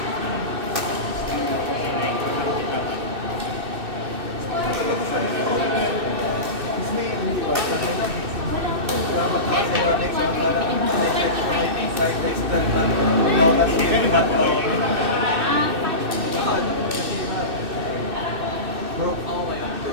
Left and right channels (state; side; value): late; left; 2.6 ms